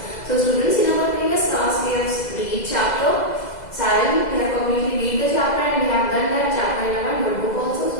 So students, in our previous class we have read chapter 7, we have completely read the chapter and we have done that chapter in our notebook also.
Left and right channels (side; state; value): right; late; 2.0 ms